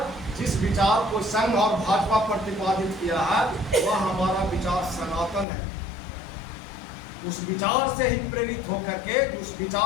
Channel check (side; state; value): right; drops out; at 5.5 s